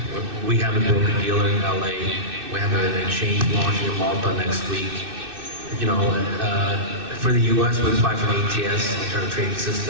We have a broker-dealer in L.A. We have an exchange launching in Malta next week. For the U.S., we apply for an ATS, alternative trading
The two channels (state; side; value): late; left; 2.6 ms